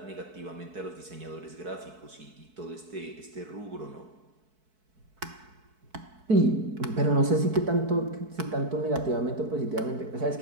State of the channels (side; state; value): left; late; 4.6 ms